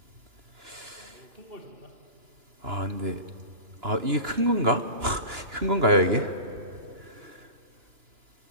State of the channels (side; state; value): left; late; 2.9 ms